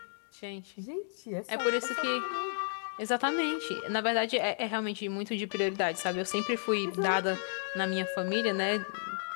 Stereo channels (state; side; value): silent; right; digital silence